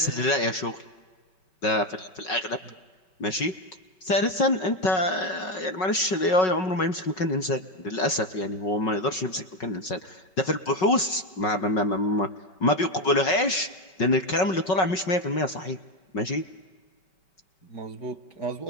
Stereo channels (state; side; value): late; right; 5.4 ms